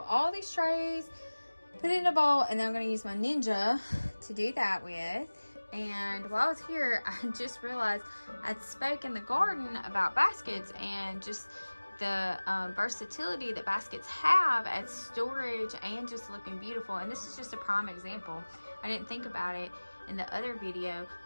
all these trays, put it in a bowl, and then I'm gonna use my Ninja to do that with. And while I was here, I just realized I'd spoke in the garden about baskets and just the versatility that baskets have as storage and just looking beautiful. And this is just a prime example. I didn't think about it in the other video,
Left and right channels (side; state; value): both; inverted; correlation -1.00